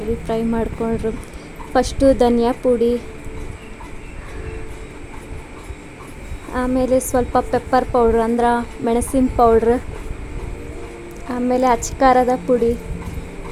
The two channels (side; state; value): both; identical; correlation 1.00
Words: ಫ್ರೈ ಮಾಡ್ಕೊಂಡ್ರು. ಫಸ್ಟು ಧನಿಯಾ ಪುಡಿ, ಆಮೇಲೆ ಸ್ವಲ್ಪ ಪೆಪ್ಪರ್ ಪೌಡ್ರ್ ಅಂದ್ರೆ ಮೆಣಸಿನ ಪೌಡ್ರ್, ಆಮೇಲೆ ಅಚ್ಕಾರದ ಪುಡಿ,